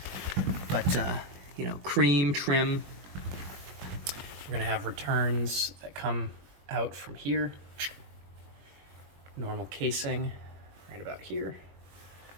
But, you know, cream trim. We're going to have returns that come out from here. Normal casing right about here.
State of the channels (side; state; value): left; late; 21 ms